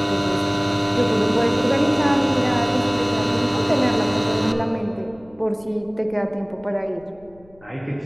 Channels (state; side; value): noise; left; rumble, 27 dB below the sound